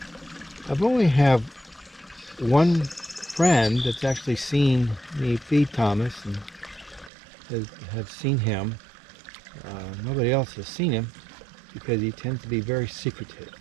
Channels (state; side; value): drops out; left; at 7.1 s